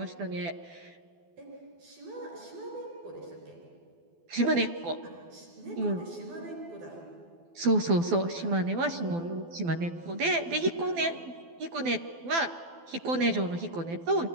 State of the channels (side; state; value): left; late; 12 ms